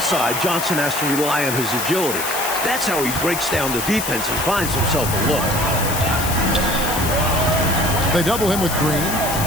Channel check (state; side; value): noise; left; hiss, 5 dB below the sound